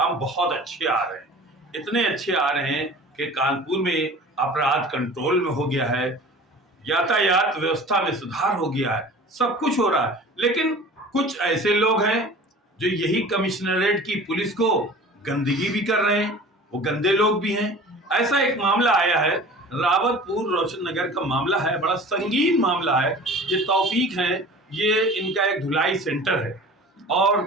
बहुत अच्छे आ रहे हैं। इतने अच्छे आ रहे हैं कि कानपुर में अपराध कंट्रोल में हो गया है, यातायात व्यवस्था में सुधार हो गया है, सब कुछ हो रहा है। लेकिन कुछ ऐसे लोग हैं जो यही कमिश्नरेट की पुलिस को गंदगी भी कर रहे हैं, वो गंदे लोग भी हैं। ऐसा एक मामला आया है, रावतपुर रोशन नगर का मामला है, बड़ा संगीन मामला है। ये तौफीक हैं, ये इनका एक धुलाई सेंटर है और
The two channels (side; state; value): both; normal; correlation 0.41